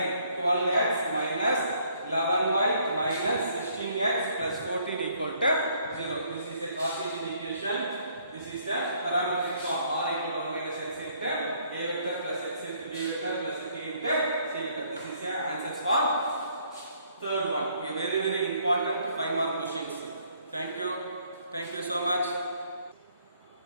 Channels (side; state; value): both; inverted; correlation -0.65